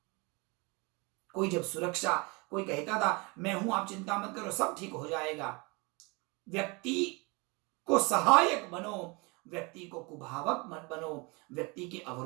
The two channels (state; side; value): quieter; left; 28.1 dB